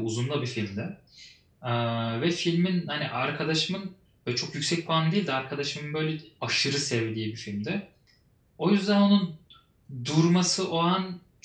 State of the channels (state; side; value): identical; both; correlation 1.00